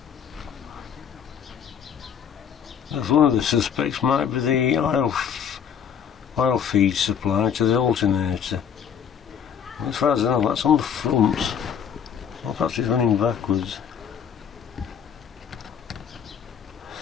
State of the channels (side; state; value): right; quieter; 7.9 dB